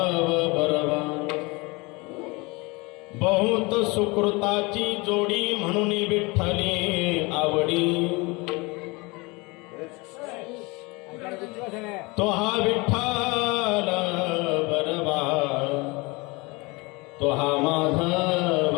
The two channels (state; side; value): quieter; right; 25.8 dB